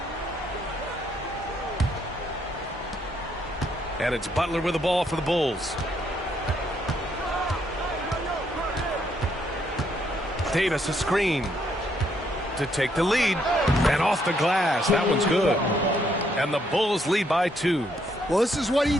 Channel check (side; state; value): both; normal; correlation 0.72